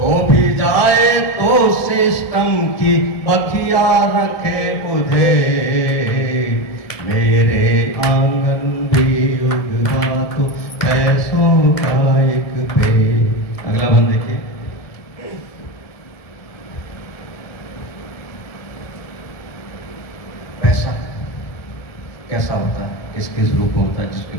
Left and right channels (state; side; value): late; right; 1.7 ms